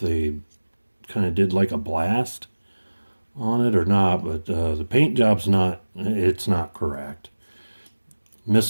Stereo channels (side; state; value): both; inverted; correlation -1.00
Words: kind of did like a blast on it or not, but the paint job's not correct.